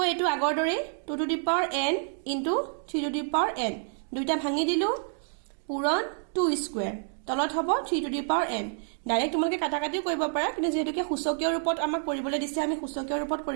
এটো আগৰ দৰে 2 to the power n into 3 to the power n দুইটা ভাঙি দিলো, পূৰণ 2 square, তলত হ'ব 3 to the power n। Direct তোমালোকে কাটা কাটিও কৰিব পাৰা, কিন্তু যেহেতুকে সূচকীয় ৰূপত আমাক কৰিবলৈ দিছে আমি সূচকীয় ৰূপত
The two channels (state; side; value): silent; left; 59 dB below the other